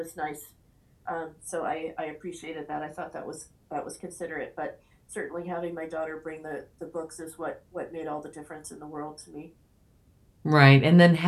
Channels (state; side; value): identical; both; correlation 1.00